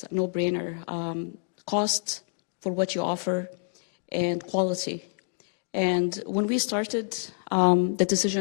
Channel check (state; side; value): silent; right; digital silence